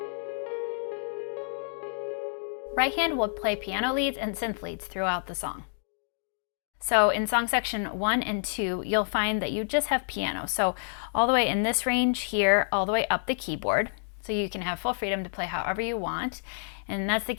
Right hand will play piano leads and synth leads throughout the song. So in song section 1 and 2, you'll find that you just have piano. So all the way in this range here, all the way up the keyboard. So you can have full freedom to play however you want. And that's the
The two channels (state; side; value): silent; right; digital silence